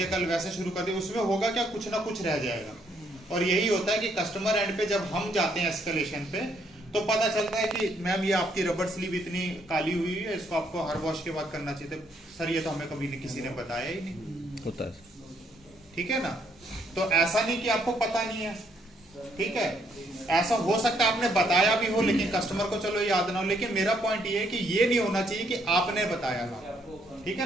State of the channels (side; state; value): both; normal; correlation 0.71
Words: कल वैसे शुरू कर दिया, उसमें होगा क्या, कुछ ना कुछ रह जाएगा। और यही होता है कि कस्टमर एंड पे जब हम जाते हैं एस्केलेशन पे, तो पता चलता है कि मैम ये आपकी रबर स्लीव इतनी काली हुई है, इसको आपको हर वॉश के बाद करना चाहिए। सर ये तो हमें कभी किसी ने बताया ही नहीं होता है, ठीक है ना। तो ऐसा नहीं कि आपको पता नहीं है, ठीक है। ऐसा हो सकता है आपने बताया भी हो लेकिन कस्टमर को चलो याद ना हो, लेकिन मेरा पॉइंट ये है कि ये नहीं होना चाहिए कि आपने बताया था, ठीक है